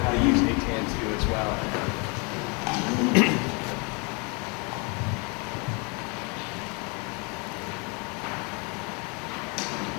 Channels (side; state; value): right; quieter; 32.0 dB